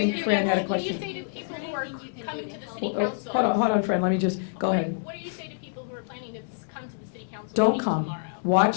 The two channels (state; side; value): silent; right; 60 dB below the other